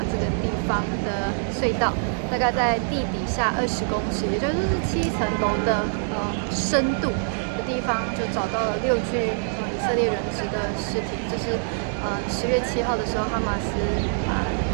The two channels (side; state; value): left; silent; digital silence